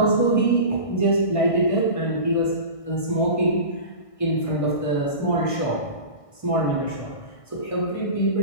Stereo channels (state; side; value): late; right; 1.6 ms